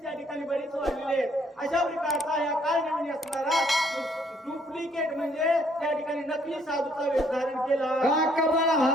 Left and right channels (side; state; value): both; normal; correlation 0.66